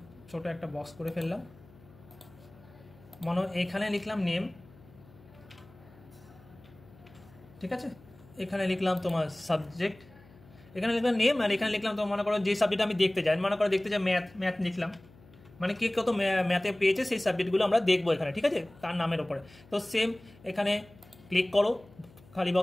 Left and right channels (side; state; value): left; noise; hum, 24 dB below the sound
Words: ছোট একটা বক্স করে ফেললাম, এখানে লিখলাম নেম। ঠিক আছে, এখানে লিখলাম তোমার সাবজেক্ট, এখানে লিখলাম নেম, আর এখানে লিখলাম তো মনে করো যে সাবজেক্ট আমি দেখতে চাই, মনে করো দেখতে চাই ম্যাথ লিখলাম, মানে কে কত ম্যাথে পেয়েছে সেই সাবজেক্টগুলো আমরা দেখবো এখানে। ঠিক আছে, তার নামের ওপরে। তো সেম এখানে ক্লিক করো, খালি